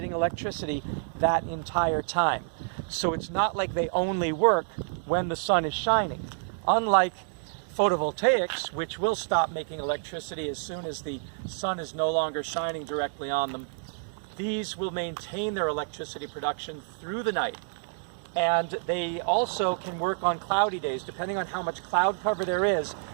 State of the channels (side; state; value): left; silent; digital silence